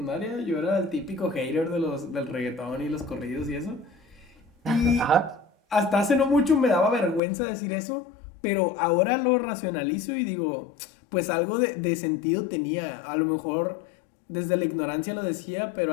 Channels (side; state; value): right; drops out; at 7.2 s